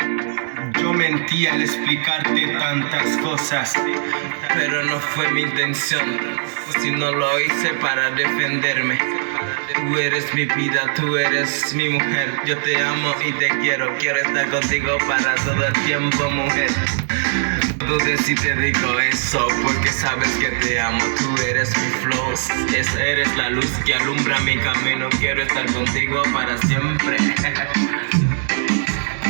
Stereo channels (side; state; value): left; silent; digital silence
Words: Yo mentí al explicarte tantas cosas, pero no fue mi intención, si no lo hice para defenderme. Tú eres mi vida, tú eres mi mujer. Yo te amo y te quiero estar contigo para todo el tiempo, mujer. No dudes si te digo eso, porque sabes que te amo. Tú eres mi flow, eres la luz que alumbra mi camino. Quiero estar contigo para siempre.